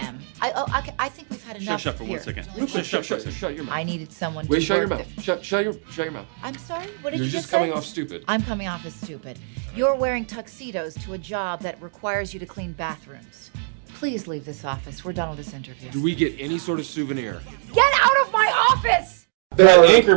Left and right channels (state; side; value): silent; left; digital silence